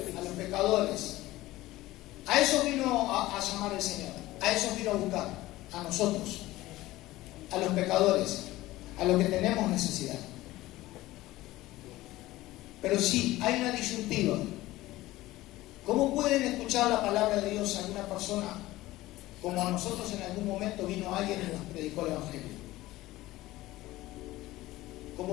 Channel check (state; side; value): quieter; right; 17.4 dB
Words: A los pecadores. A eso vino a llamar el Señor, a eso vino a buscar, a nosotros, a los pecadores, a los que tenemos necesidad. Pero sí, hay una disyuntiva. ¿Cómo pueden escuchar la palabra de Dios a alguna persona como a nosotros en algún momento vino alguien y nos predicó el Evangelio?